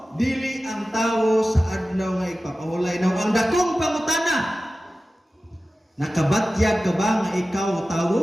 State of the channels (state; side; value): normal; both; correlation 0.95